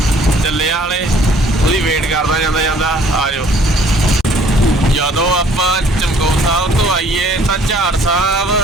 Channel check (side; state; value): both; normal; correlation 0.58